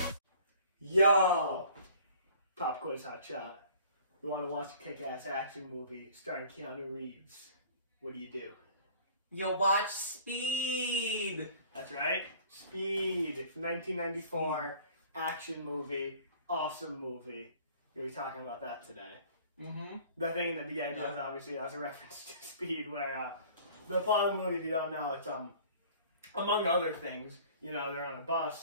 Yo! Pop quiz hot shot. You want to watch a kick-ass action movie starring Keanu Reeves? What do? You'll watch Speed! That's right. Speed. It's a 1994 action movie. Awesome movie. We're going to be talking about that today. Mm-hmm. The thing in the beginning was obviously as a reference to Speed, where the plot of the movie, if you don't know, it's among other things, you know, they're on a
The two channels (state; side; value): inverted; both; correlation -0.50